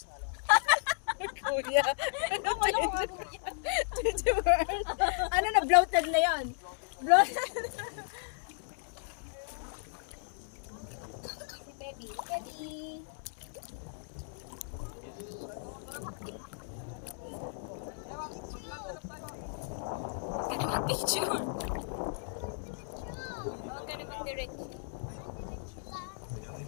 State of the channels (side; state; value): right; silent; digital silence